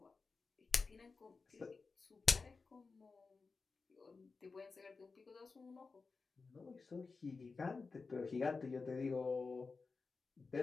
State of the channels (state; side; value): quieter; right; 4.4 dB